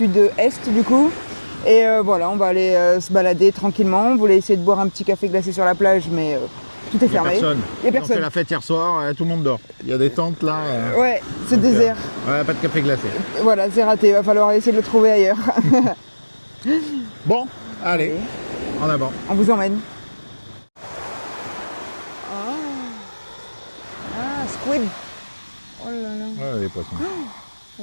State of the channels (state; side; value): inverted; both; correlation -1.00